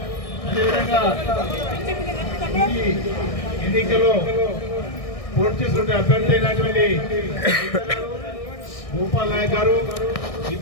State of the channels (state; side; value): late; right; 1.6 ms